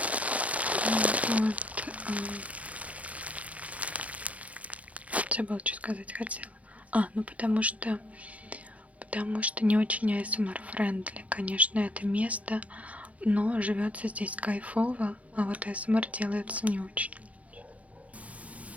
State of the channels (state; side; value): late; left; 0.067 ms